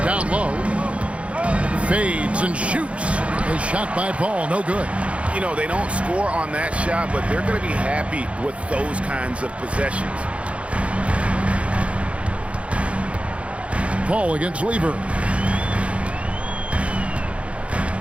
low. Fades and shoots. A shot by Paul, no good. You know, they don't score on that shot, but they're going to be happy with those kinds of possessions. Paul against Lever.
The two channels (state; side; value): late; left; 0.062 ms